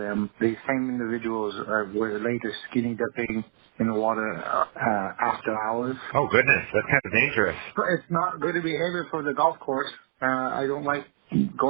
These same individuals were later skinny dipping in the water after hours. Oh goodness, that's kind of dangerous. It's not good behavior for the golf course. I don't like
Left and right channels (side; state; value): left; silent; 61 dB below the other